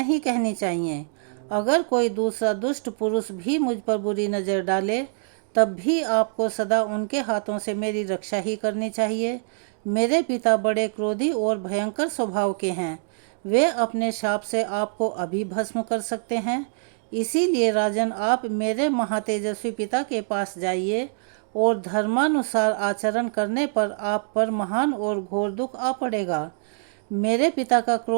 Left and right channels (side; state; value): left; silent; digital silence